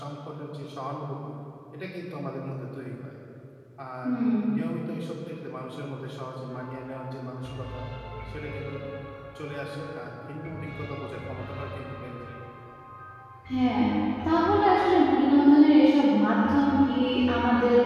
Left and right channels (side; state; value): both; identical; correlation 1.00